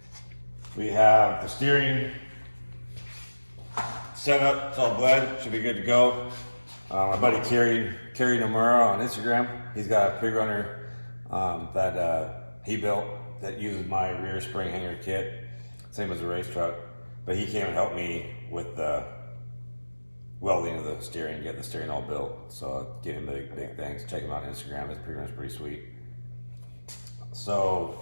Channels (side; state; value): both; inverted; correlation -1.00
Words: We have the steering set up, it's all bled, should be good to go. My buddy Kerry Nomura on Instagram, he's got a pre-runner that he built that uses my rear spring hanger kit, same as the race truck. But he came and helped me with the welding of the steering, getting the steering all built. So give him big thanks. Check him out on Instagram, his pre-runner's pretty sweet. So